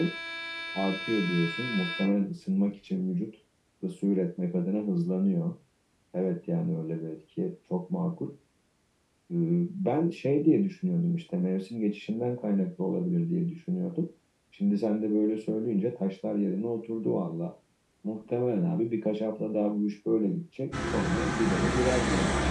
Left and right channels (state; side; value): identical; both; correlation 1.00